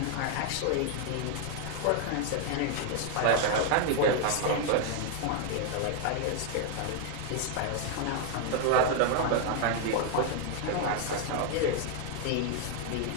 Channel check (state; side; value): different; both; correlation 0.00